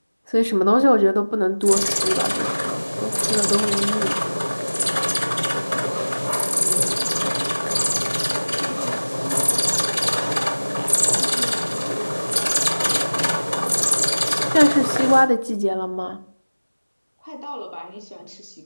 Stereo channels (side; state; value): both; inverted; correlation -1.00